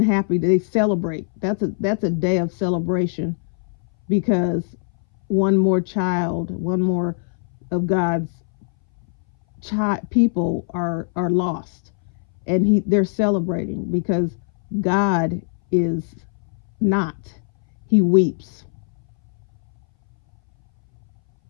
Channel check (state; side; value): silent; right; 62 dB below the other